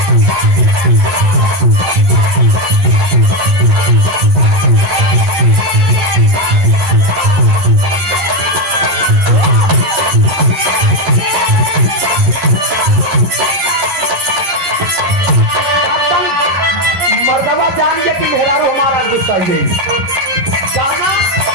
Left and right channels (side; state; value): left; late; 11 ms